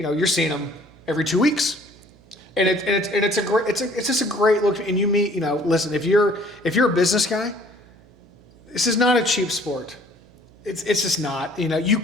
know, you're seeing them every 2 weeks. And it's just a great look. And you meet, you know, listen, if you're a business guy, this is not a cheap sport. It's just not. You know, you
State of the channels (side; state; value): right; noise; hum, 26 dB below the sound